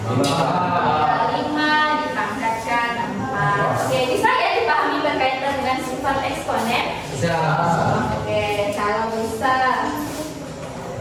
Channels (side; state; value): both; identical; correlation 1.00